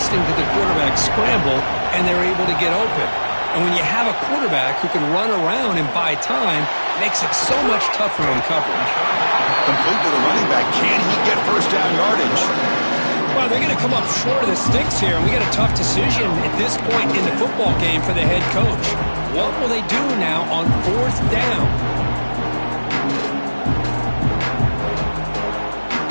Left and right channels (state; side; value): inverted; both; correlation -1.00